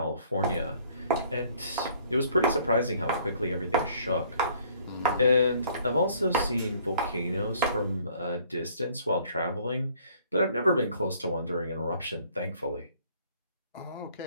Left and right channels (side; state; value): both; inverted; correlation -0.58